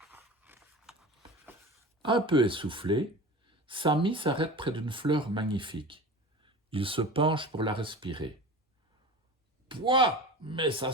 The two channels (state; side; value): normal; both; correlation 0.34